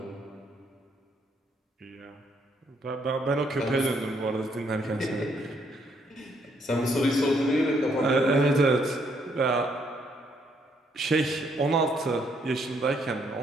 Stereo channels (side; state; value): both; normal; correlation 0.71